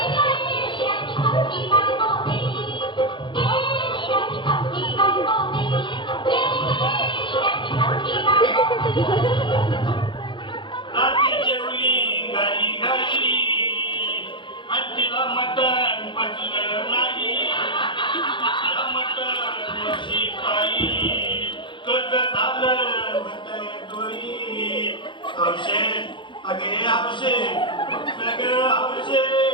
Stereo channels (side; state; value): right; late; 0.23 ms